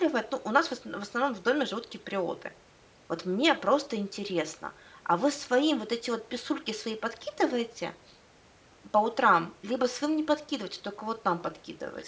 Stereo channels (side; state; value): both; identical; correlation 1.00